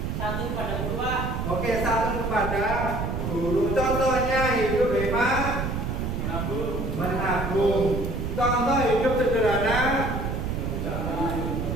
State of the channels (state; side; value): noise; right; rumble, 2 dB below the sound